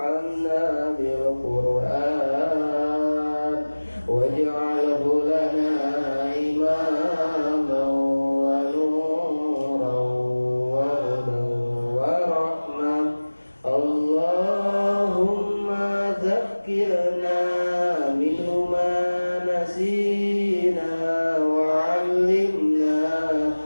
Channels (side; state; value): both; inverted; correlation -1.00